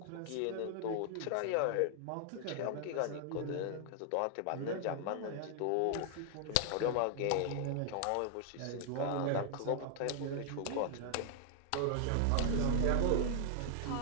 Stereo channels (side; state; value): both; different; correlation 0.00